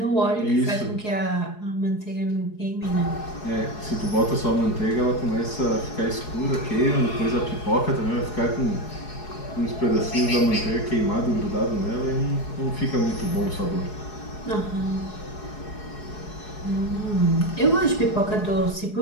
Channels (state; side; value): late; right; 4.8 ms